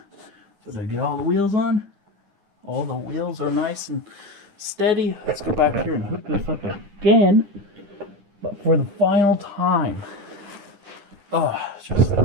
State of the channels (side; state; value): left; late; 9.9 ms